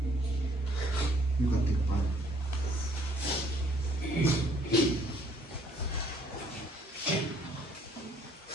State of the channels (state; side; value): normal; both; correlation 0.62